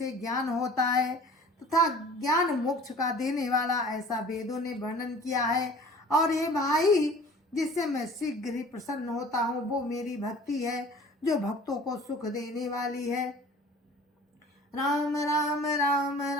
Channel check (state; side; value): normal; both; correlation 0.46